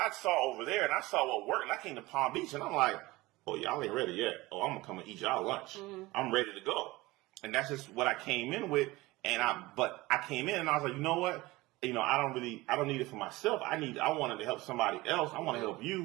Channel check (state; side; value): quieter; left; 20.3 dB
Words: saw over there and I saw what worked. And I came to Palm Beach and I'm like, oh, y'all ain't ready yet. Oh, I'm going to come and eat y'all lunch. I'm ready to go. And that's just what I came in with. But I came in and I was like, you know what? I don't need it for myself. I wanted to help somebody else. I want to help